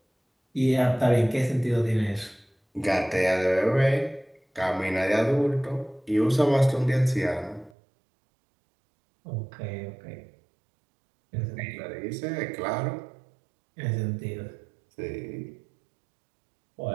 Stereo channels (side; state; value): left; drops out; at 7.8 s